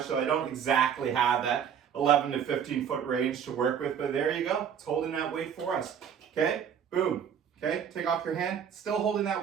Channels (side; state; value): left; quieter; 8.1 dB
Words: so I don't exactly have that 11 to 15 foot range to work with, but there you go. It's holding that weight for us, okay? Boom, okay? Take off your hand, still holding